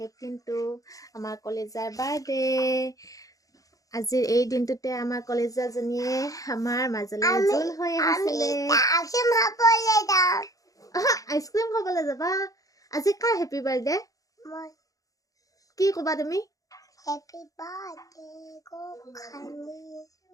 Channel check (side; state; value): right; late; 0.17 ms